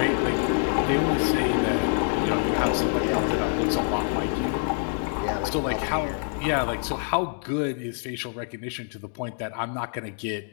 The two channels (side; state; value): right; silent; 60 dB below the other